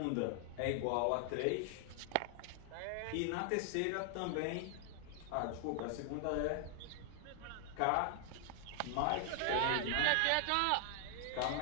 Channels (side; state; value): both; different; correlation 0.00